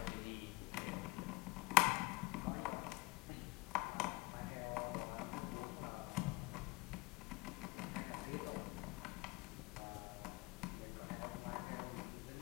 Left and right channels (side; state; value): right; quieter; 23.1 dB